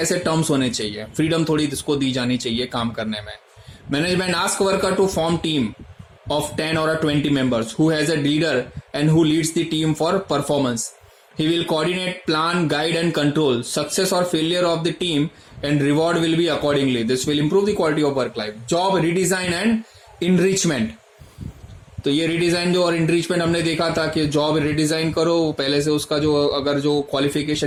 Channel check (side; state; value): both; identical; correlation 1.00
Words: टर्म्स होने चाहिए. फ्रीडम थोड़ी इसको दी जानी चाहिए काम करने में. Management ask worker to form team of 10 or 20 members who has a leader and who leads the team for performance. He will coordinate, plan, guide and control success or failure of the team and reward will be accordingly. This will improve the quality of work life. Job redesign and enrichment. तो ये redesign जो और इंट्रीचमेंट हमने देखा था कि job redesign करो, पहले से उसका जो अगर जो